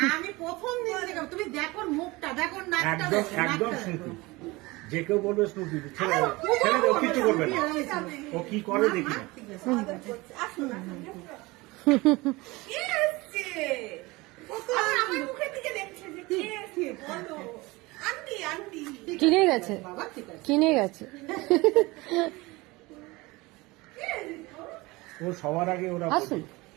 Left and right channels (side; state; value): left; quieter; 22.4 dB